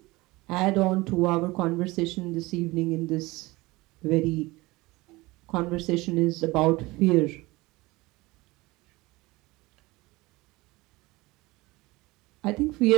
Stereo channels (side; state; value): left; quieter; 21.4 dB